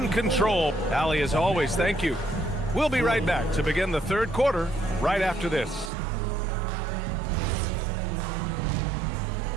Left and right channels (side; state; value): left; drops out; at 5.9 s